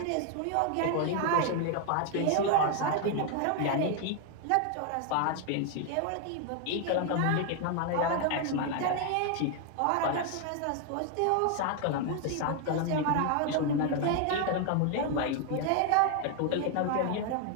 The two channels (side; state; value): both; different; correlation 0.00